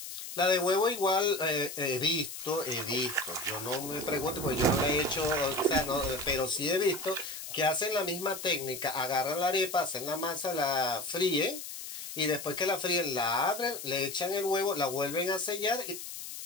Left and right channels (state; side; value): noise; left; hiss, 9 dB below the sound